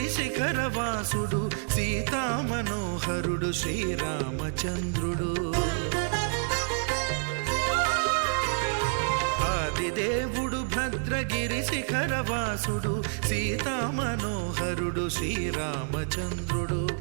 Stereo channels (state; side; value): silent; left; 59 dB below the other